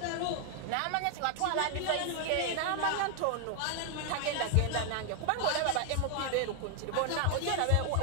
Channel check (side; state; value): both; different; correlation 0.00